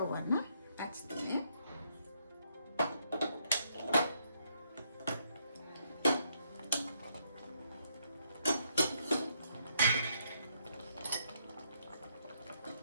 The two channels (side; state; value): both; inverted; correlation -0.75